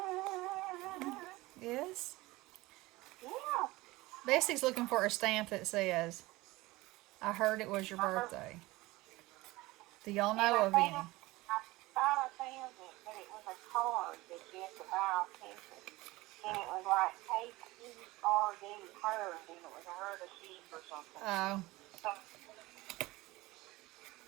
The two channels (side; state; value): left; quieter; 20.2 dB